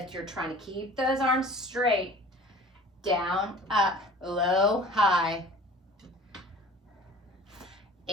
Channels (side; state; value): both; normal; correlation 0.45